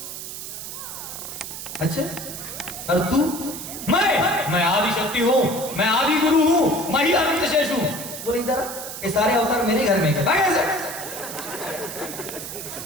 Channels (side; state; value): right; noise; hiss, 9 dB below the sound